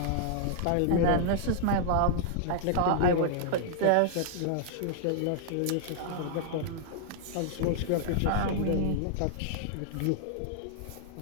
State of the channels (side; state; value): both; different; correlation -0.01